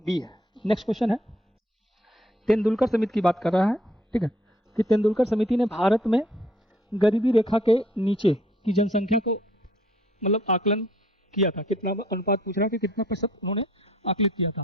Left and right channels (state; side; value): normal; both; correlation 0.62